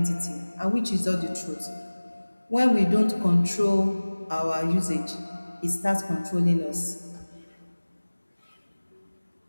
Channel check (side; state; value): both; inverted; correlation -1.00